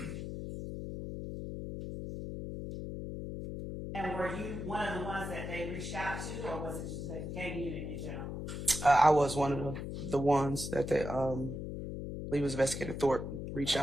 And were you one of the ones that they reached out to, or was it just the gang unit in general? I was one of the ones that they, I believe it was Investigator Thorpe, reached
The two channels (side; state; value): left; noise; hum, 6 dB below the sound